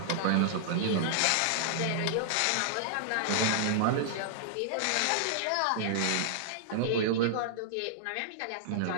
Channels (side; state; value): both; different; correlation -0.01